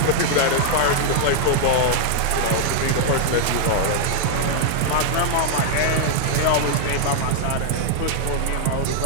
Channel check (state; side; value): different; both; correlation -0.01